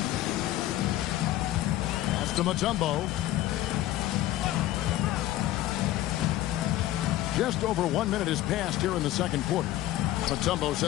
Pass to Mutombo. Just over 1 minute has passed here in the second quarter. Mutombo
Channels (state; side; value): quieter; right; 14.5 dB